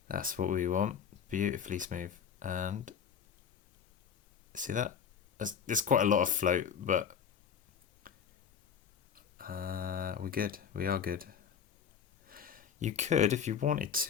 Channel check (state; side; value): quieter; right; 7.6 dB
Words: That's what we want. Beautifully smooth. And see that? There's quite a lot of float, but we're good. We are good. You could, if you wanted